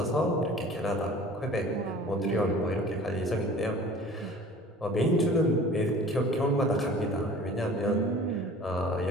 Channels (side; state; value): both; normal; correlation 0.45